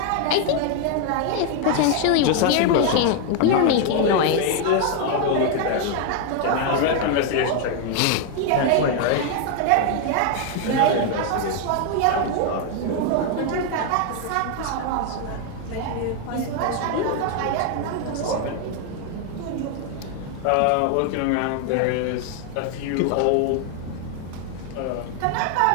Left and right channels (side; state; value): both; different; correlation 0.01